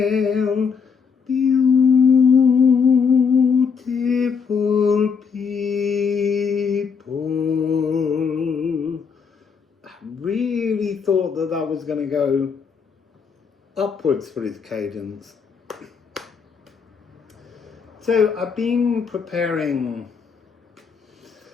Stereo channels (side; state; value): right; quieter; 6.0 dB